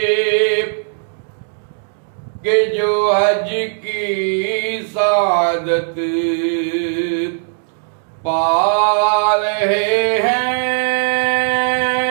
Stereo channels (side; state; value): left; silent; digital silence